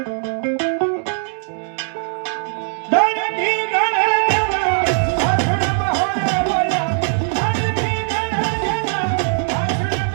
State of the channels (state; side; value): silent; left; 65 dB below the other